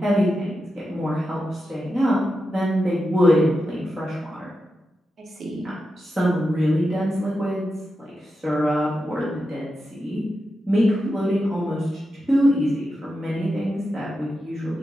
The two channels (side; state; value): both; normal; correlation 0.89